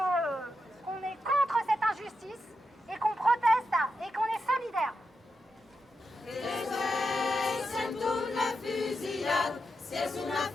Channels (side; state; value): both; normal; correlation 0.86